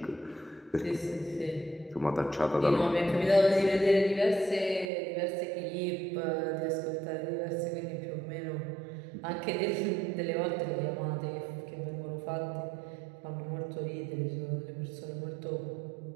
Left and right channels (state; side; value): drops out; left; at 4.9 s